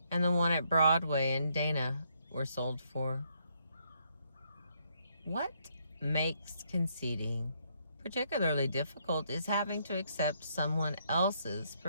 and the one at Broadway and Dana were sold for. What makes conceding particularly difficult is having to accept someone else's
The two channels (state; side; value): inverted; both; correlation -0.73